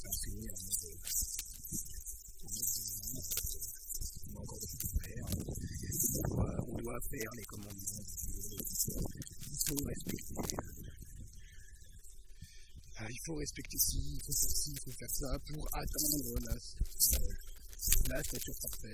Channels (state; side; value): identical; both; correlation 1.00